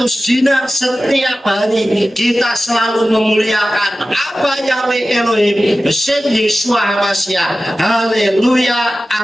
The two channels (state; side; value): normal; both; correlation 0.95